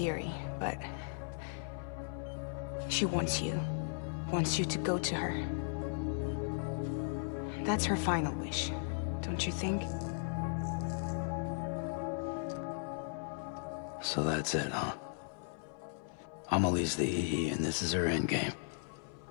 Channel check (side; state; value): right; silent; 53 dB below the other